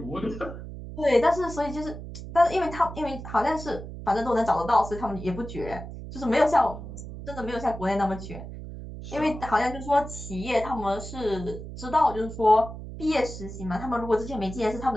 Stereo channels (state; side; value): noise; right; hum, 10 dB below the sound